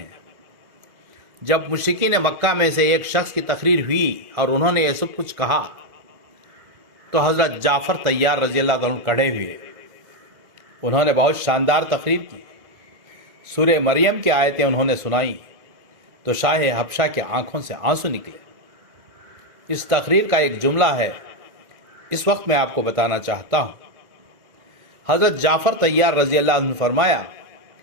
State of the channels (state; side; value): late; left; 2.0 ms